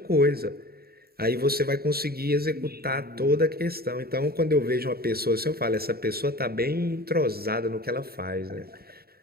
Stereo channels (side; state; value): left; late; 0.45 ms